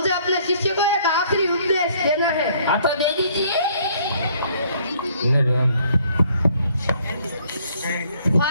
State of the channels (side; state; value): both; inverted; correlation -0.62